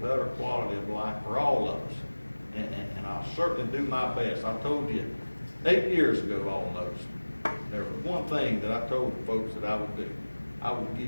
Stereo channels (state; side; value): inverted; both; correlation -1.00